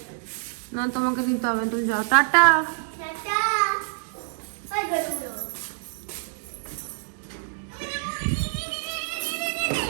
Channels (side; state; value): left; silent; digital silence